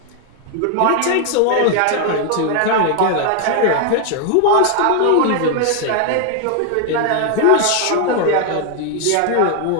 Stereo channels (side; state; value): both; different; correlation 0.00